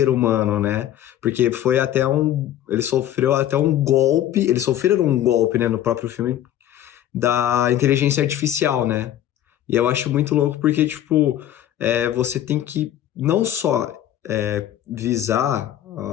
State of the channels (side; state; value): right; quieter; 11.9 dB